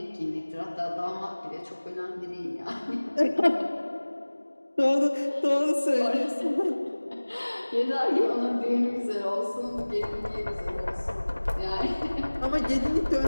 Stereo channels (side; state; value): both; inverted; correlation -1.00